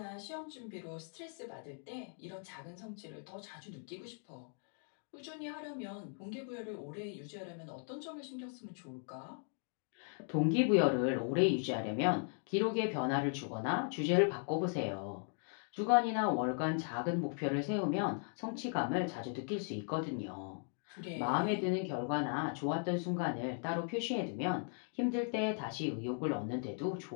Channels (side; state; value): right; silent; 52 dB below the other